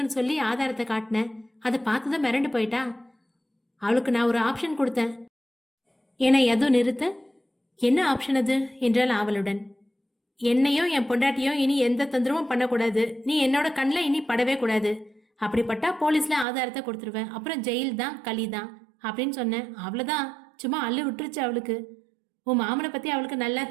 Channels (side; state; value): left; drops out; at 16.4 s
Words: சொல்லி ஆதாரத்தை காட்டினேன். அதை பார்த்துதான் மிரண்டு போயிட்டா. அவளுக்கு நான் ஒரு ஆப்ஷன் கொடுத்தேன் என எதுவும் நிறுத்த, என்ன ஆப்ஷன் அது என்றால் அவளுடன், என்னையும் என் பொண்டாட்டியும் இனி எந்த தொந்தரவும் பண்ணக்கூடாது, நீ என்னோட கண்ணில் இனி படவே கூடாது, அப்படிப்பட்டா போலீஸ்ல ஆதாரத்தை கொடுத்துருவேன், அப்புறம் ஜெயில் தான் களி தான் அப்படின்னு சொன்னேன். அவ்வளோதான், சும்மா அள்ளு விட்டுருச்சு அவளுக்கு. உன் மாமனை பத்தி அவளுக்கு நல்லா